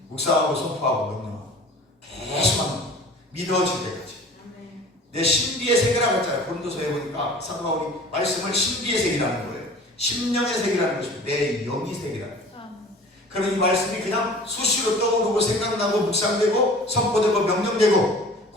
묵상하고 선포하고 명령하고 계속 합니다. 믿어질 때까지. 내 신비의 세계라고 했잖아요. 고린도서에 보니까 사도 바울이 말씀을 신비의 세계라는 거예요. 심령의 세계라는 것이고 내 영의 세계라는 거예요. 그러면 이 말씀이 그냥 수시로 떠오르고 생각나고 묵상되고 선포되고 명령되고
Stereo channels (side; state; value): both; normal; correlation 0.44